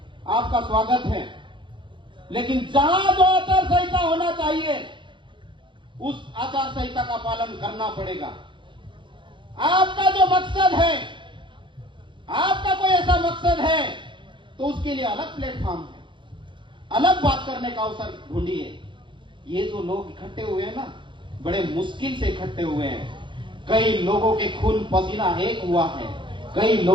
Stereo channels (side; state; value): left; late; 0.23 ms